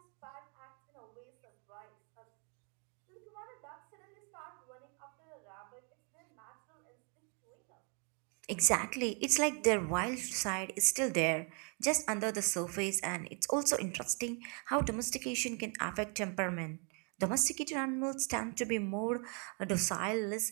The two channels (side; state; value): left; quieter; 37.4 dB